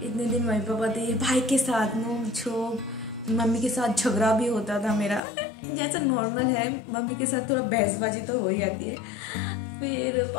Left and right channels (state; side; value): drops out; right; at 5.2 s